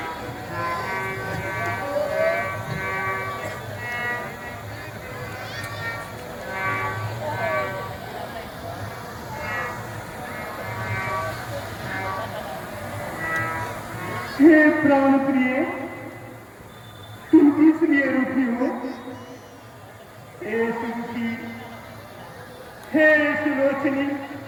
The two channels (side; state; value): both; identical; correlation 1.00